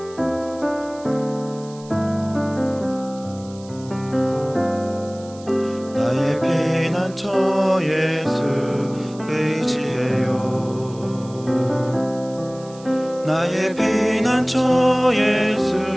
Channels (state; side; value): noise; right; hiss, 22 dB below the sound